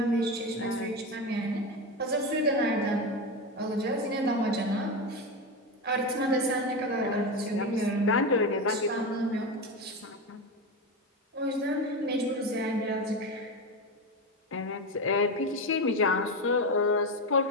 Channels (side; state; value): both; normal; correlation 0.17